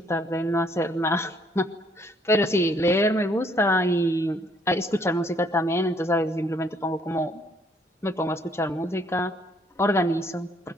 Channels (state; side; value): normal; both; correlation 0.65